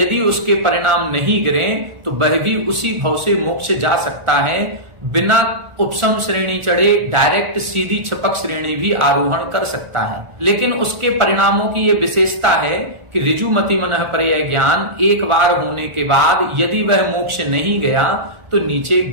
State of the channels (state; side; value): late; left; 1.4 ms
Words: उसके परिणाम नहीं गिरे तो वह भी उसी भव से मोक्ष जा सकता है, बिना उपसम श्रेणी चढ़े डायरेक्ट सीधी छपक श्रेणी भी आरोहण कर सकता है। लेकिन उसके परिणामों की यह विशेषता है कि ऋजुमति मनःपर्यय ज्ञान एक बार होने के बाद यदि वह मोक्ष नहीं गया तो नीचे